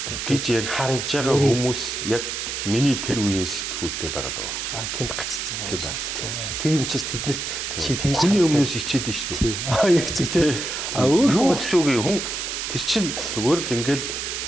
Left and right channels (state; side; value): noise; right; hiss, 4 dB below the sound